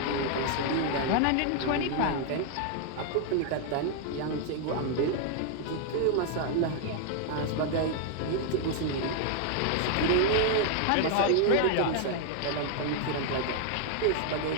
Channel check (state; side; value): different; both; correlation 0.00